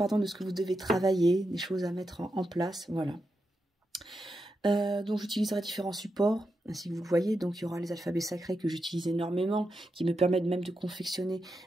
que vous devez travailler, des choses à mettre en place, voilà. Donc j'utiliserai différents supports, ainsi que vous le voyez. Donc il y aura les alphabets sacrés que j'utilise énormément, qui me permettent même de confectionner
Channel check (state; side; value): normal; both; correlation 0.87